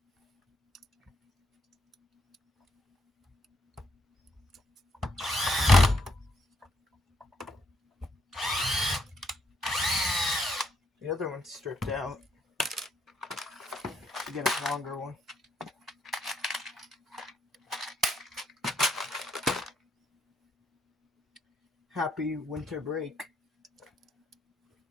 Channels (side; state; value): both; normal; correlation 0.73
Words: The other one's stripped out to get a longer one. happy winter break.